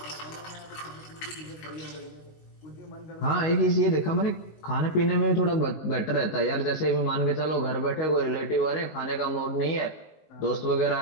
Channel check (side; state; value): right; late; 19 ms